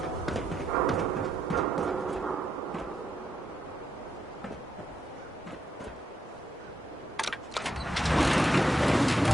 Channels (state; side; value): normal; both; correlation 0.80